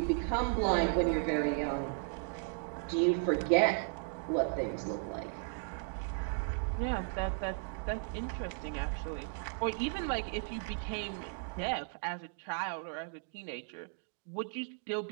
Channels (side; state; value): left; silent; 54 dB below the other